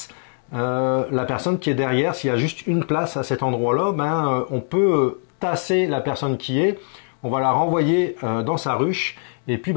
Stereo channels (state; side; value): silent; right; digital silence